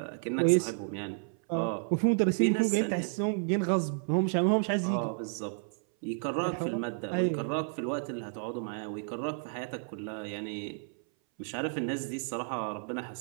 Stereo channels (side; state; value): left; silent; 57 dB below the other